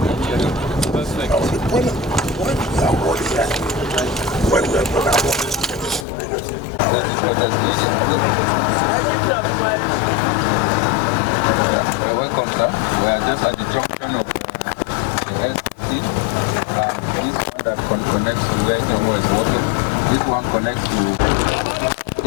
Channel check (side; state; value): right; drops out; at 6.1 s